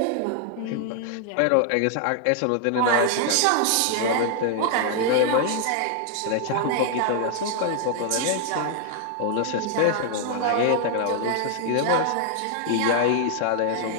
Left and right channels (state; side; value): different; both; correlation 0.00